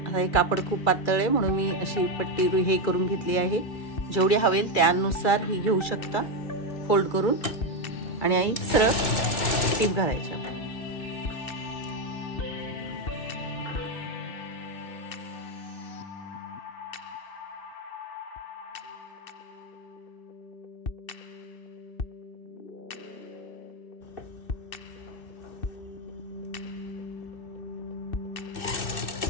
आता हे कापड खूप पातळ आहे म्हणून मी अशी पट्टी हे करून घेतली आहे, जेवढी हवेल त्यानुसार ही घेऊ शकता फोल्ड करून, आणि आई सरळ टीप घालायची।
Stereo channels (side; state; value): right; late; 2.3 ms